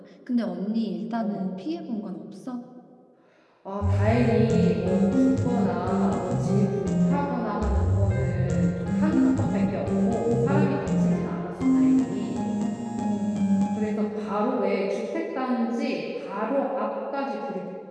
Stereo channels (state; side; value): identical; both; correlation 1.00